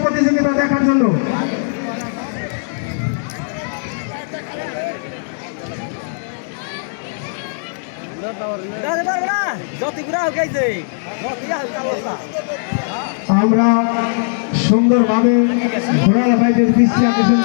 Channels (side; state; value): right; silent; digital silence